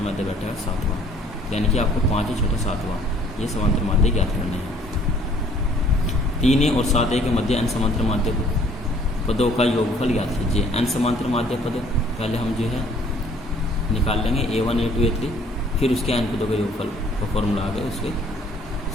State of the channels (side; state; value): both; normal; correlation 0.58